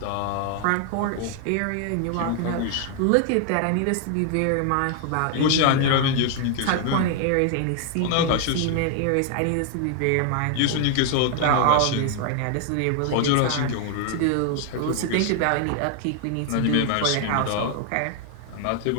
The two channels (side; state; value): both; different; correlation 0.00